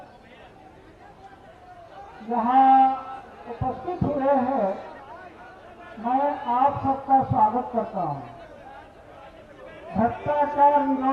यहाँ उपस्थित हुए हैं, मैं आप सबका स्वागत करता हूँ। भ्रष्टाचार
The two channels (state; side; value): identical; both; correlation 1.00